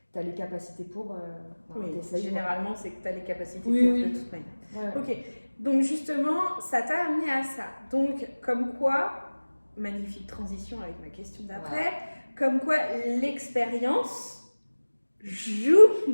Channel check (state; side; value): inverted; both; correlation -1.00